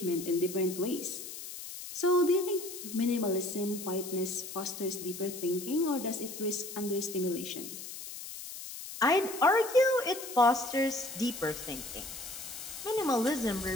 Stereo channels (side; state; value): left; noise; hiss, 10 dB below the sound